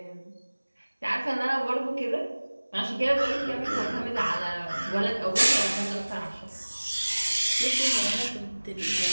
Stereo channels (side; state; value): both; inverted; correlation -1.00